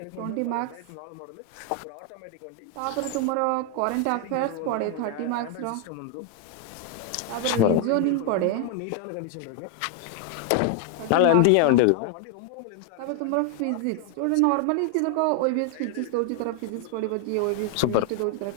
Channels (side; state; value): both; different; correlation 0.00